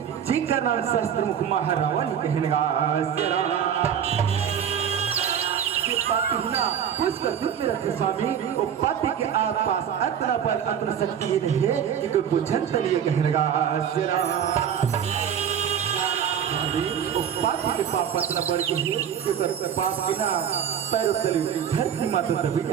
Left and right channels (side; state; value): left; quieter; 8.6 dB